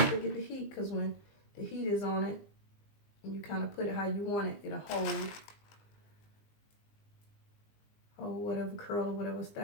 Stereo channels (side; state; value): right; late; 20 ms